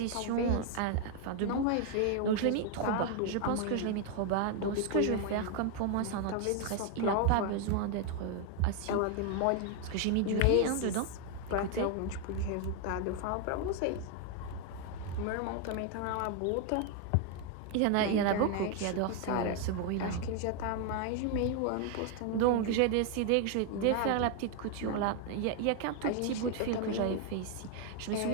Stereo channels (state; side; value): different; both; correlation 0.00